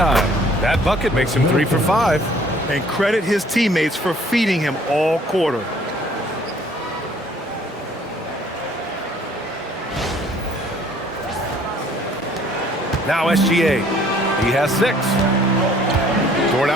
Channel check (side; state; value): both; normal; correlation 0.58